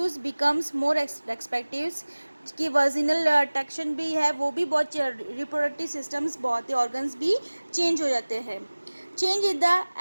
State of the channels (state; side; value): inverted; both; correlation -1.00